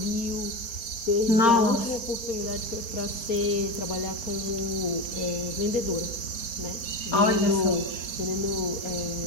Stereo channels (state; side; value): late; right; 4.3 ms